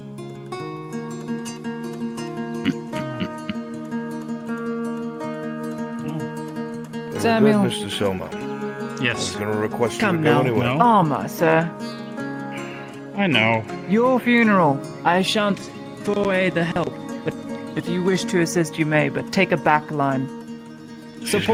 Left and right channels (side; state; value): both; identical; correlation 1.00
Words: Samuel. Good, Mr. Selma. Yes. I was going to request you Come to go now. anyway. Armor, sir. I know. Your funeral. I shan't foray the help, but if you wish to assist, you may, but take a back line. She's good